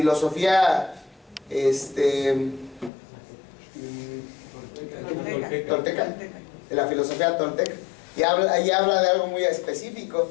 tolteca? De la filosofía tolteca. Y ahí habla de algo muy específico,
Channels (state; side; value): drops out; right; at 2.9 s